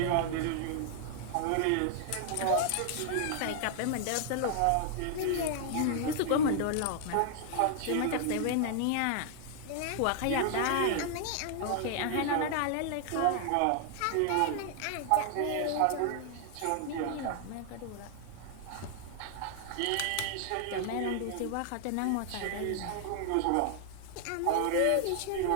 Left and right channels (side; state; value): both; different; correlation 0.00